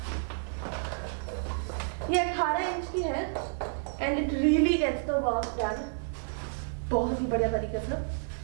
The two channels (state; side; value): silent; left; 58 dB below the other